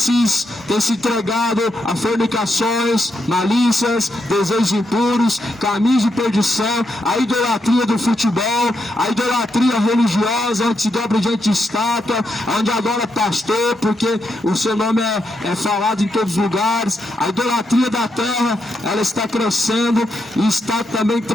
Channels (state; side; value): normal; both; correlation 0.82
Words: tem se entregado a fornicações, malícias, desejos impuros, caminhos de perdição, a idolatria do futebol, a idolatria religiosa, onde se dobra diante de estátua, onde adora pastor, porque o seu nome é falado em todos os lugares. A idolatria da terra, ela está crescendo e está também